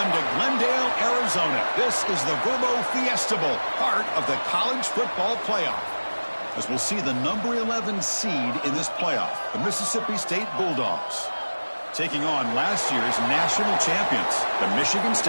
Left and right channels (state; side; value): inverted; both; correlation -1.00